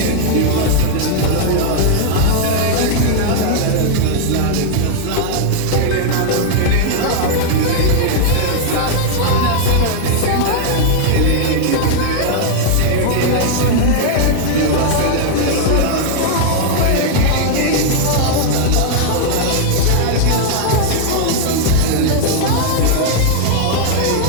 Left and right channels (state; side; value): different; both; correlation 0.00